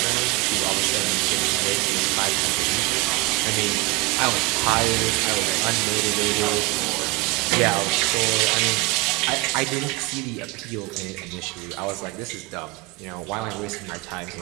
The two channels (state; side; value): quieter; left; 22.9 dB